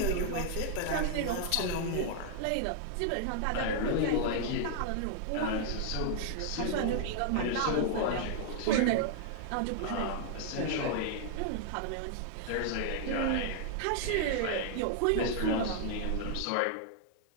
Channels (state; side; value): different; both; correlation -0.01